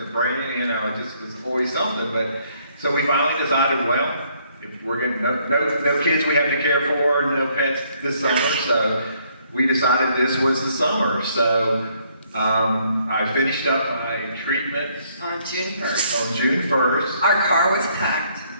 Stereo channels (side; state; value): both; inverted; correlation -0.68